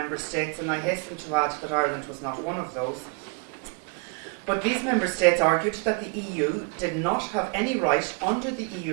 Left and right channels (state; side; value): quieter; left; 36.2 dB